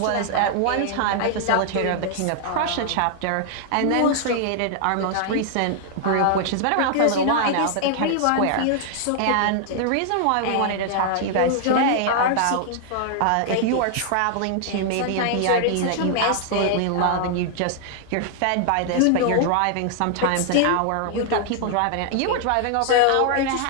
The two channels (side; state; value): both; different; correlation -0.01